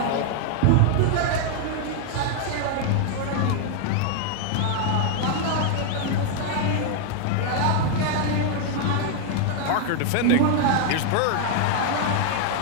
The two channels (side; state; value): both; different; correlation 0.00